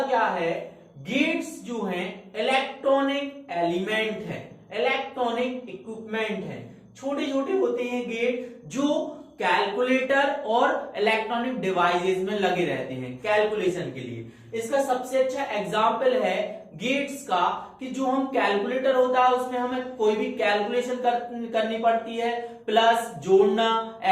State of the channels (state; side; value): identical; both; correlation 1.00